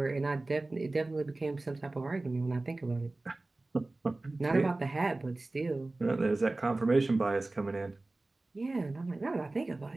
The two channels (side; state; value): left; quieter; 3.0 dB